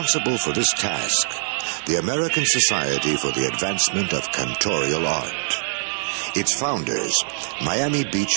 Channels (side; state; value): left; silent; digital silence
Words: for this task, the American Society for the Advancement of Cantorial Art. Its founders, Miami Beach